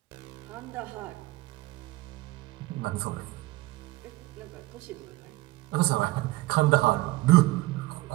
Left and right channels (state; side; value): quieter; left; 19.5 dB